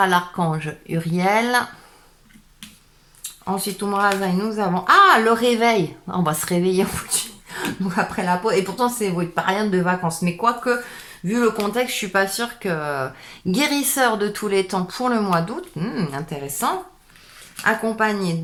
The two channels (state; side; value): identical; both; correlation 1.00